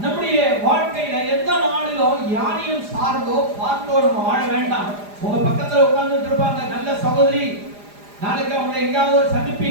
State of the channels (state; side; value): late; left; 4.9 ms